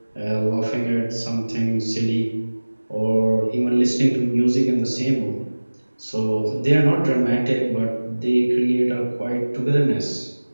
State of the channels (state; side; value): inverted; both; correlation -1.00